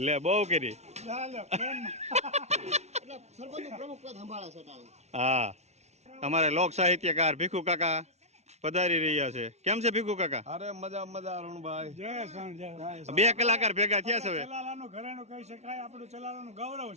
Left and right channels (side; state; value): left; late; 0.32 ms